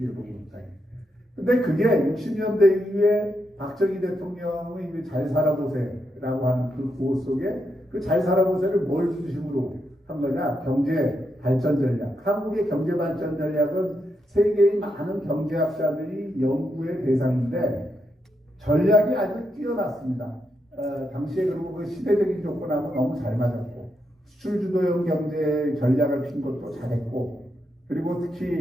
근데 그게 60년대 이후에 박정희 대통령의 잘 살아보세라고 하는 그 구호 속에 그 잘 살아보세를 뭘 중심으로 한 거냐? 경제 발전 전략. 한국의 경제 발전 전략은 세계의 많은 경제학자들이 연구의 대상인데 전략이 아주 뛰어났습니다. 당시에 그리고 그 시대적인 조건하고 너무 잘 맞았고 수출 주도형 경제 전략을 핀 것도 잘했고 그리고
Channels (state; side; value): normal; both; correlation 0.82